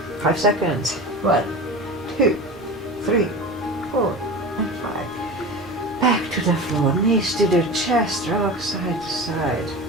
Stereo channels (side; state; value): both; normal; correlation 0.31